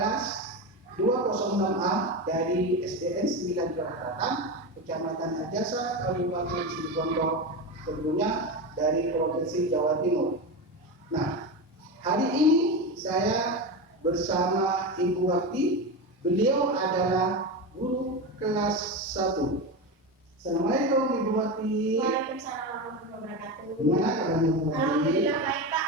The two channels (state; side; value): normal; both; correlation 0.19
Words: kelas 206A dari SDN 9 Kelahatan, Kecamatan Ajasa, Kabupaten Situbondo, tentunya dari Provinsi Jawa Timur. Nah, hari ini saya bersama Ibu Wati. Beliau adalah guru kelas 1. Assalamualaikum Ibu Wati. Waalaikumsalam warahmatullahi wabarakatuh. Gimana kabarnya Bu Wati? Alhamdulillah baik Pak.